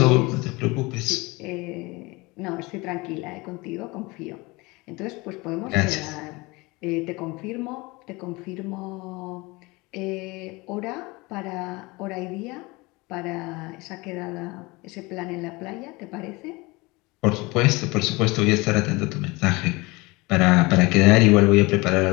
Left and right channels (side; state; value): right; quieter; 24.1 dB